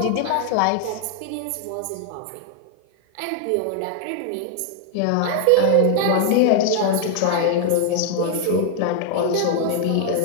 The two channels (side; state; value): both; different; correlation 0.00